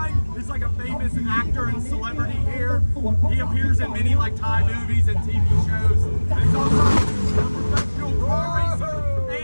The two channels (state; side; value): inverted; both; correlation -1.00